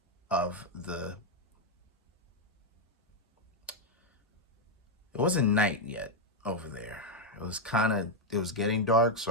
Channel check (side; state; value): both; normal; correlation 0.02